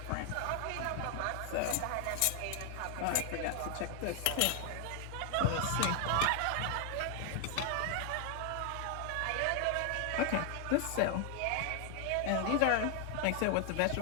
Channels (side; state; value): both; different; correlation 0.00